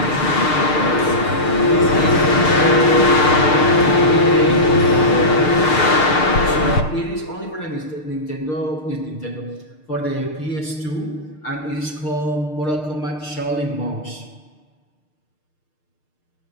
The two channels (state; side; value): late; right; 6.6 ms